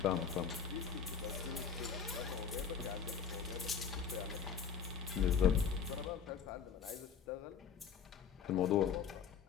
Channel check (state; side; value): quieter; right; 6.9 dB